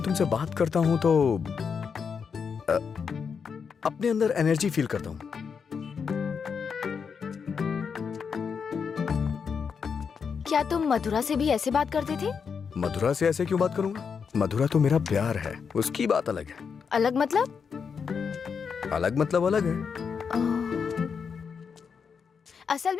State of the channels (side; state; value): right; quieter; 6.2 dB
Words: तुमसे बात करता हूँ तो अपने अंदर एनर्जी फील करता हूँ। क्या तुम मधुरा से भी ऐसे बात करते थे? मधुरा से ऐसे क्यों बात करूंगा? मधुरा तो मेरा प्यार है, उसकी बात अलग है। अलग मतलब? अलग मतलब अलग है। असल